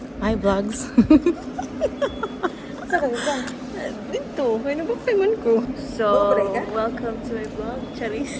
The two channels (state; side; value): identical; both; correlation 1.00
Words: Hi vlogs. Dito, may nabakayman ko. So, welcome to my vlog,